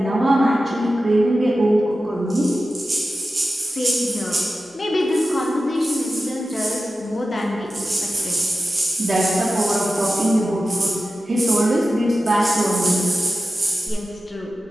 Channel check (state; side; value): normal; both; correlation 0.93